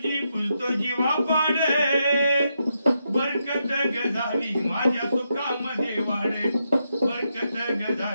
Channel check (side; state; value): both; inverted; correlation -0.83